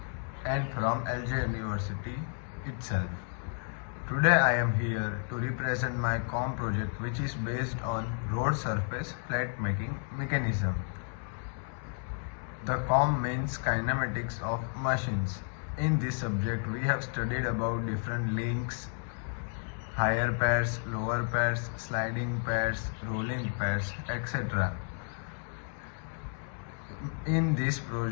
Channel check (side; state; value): right; silent; 56 dB below the other